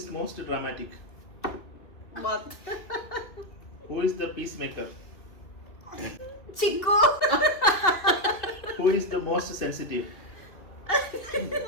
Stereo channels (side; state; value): right; late; 2.3 ms